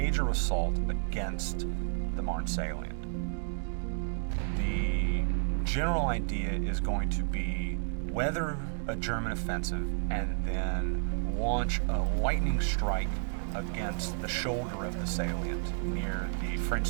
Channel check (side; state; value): left; silent; digital silence